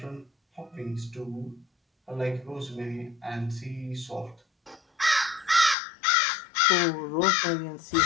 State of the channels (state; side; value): drops out; right; at 5.8 s